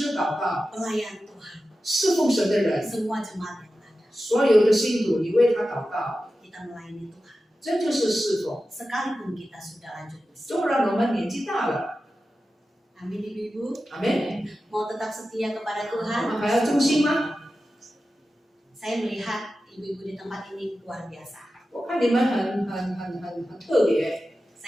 祷告， pelayan Tuhan, 侍奉神的人， semua jemaat yang ada, 所有的信徒，你为他祷告， kita melayani Tuhan. 这就是侍奉。 Sekalipun kita sudah lanjut usia. 纵然我们年纪大了， Amin ibu-ibu. 阿门， Mau tetap setia kepada 我 Tuhan. 们还要忠心吗？ Saya melihat ibu-ibu di tempat ini luar biasa. 我看你们很特别，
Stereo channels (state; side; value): normal; both; correlation 0.93